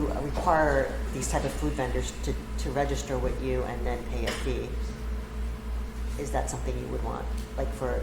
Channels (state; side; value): identical; both; correlation 1.00